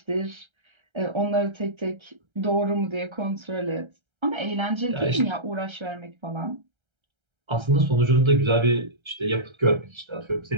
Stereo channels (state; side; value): late; left; 1.3 ms